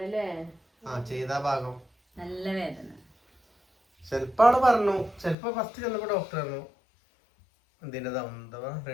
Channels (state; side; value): drops out; right; at 5.4 s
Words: അല്ലേ ചെയ്ത ഭാഗം നല്ല വേദന. ചെലപ്പോ ആള് പറഞ്ഞു, ചെലപ്പോ ഫസ്റ്റ് ചെന്നപ്പോ ഡോക്ടർ പറഞ്ഞു എന്തിൻ്റെതാ